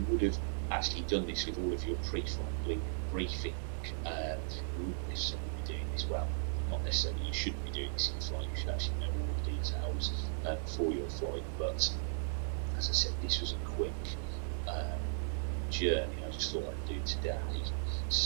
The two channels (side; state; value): left; silent; digital silence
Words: would have actually done this with all of your pre-flight briefing. You wouldn't necessarily be doing this, well, not necessarily, you shouldn't be doing this in flight, you should actually know all the details for your flight, but as I said, this was a quick journey I just thought I'd do today.